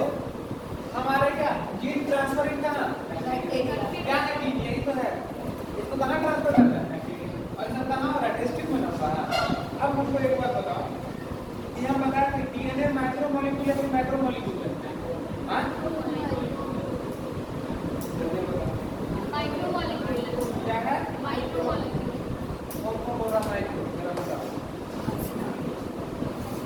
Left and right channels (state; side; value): identical; both; correlation 1.00